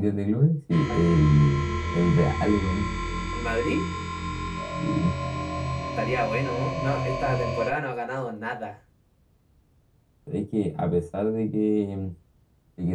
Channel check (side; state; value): both; identical; correlation 1.00